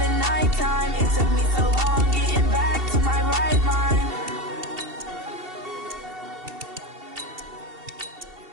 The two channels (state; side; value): late; left; 2.7 ms